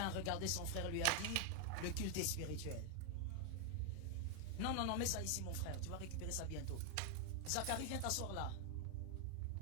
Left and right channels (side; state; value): both; different; correlation 0.01